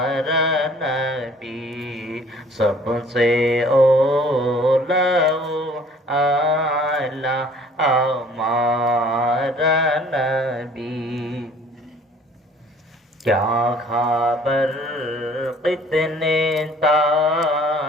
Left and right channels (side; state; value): both; normal; correlation 0.54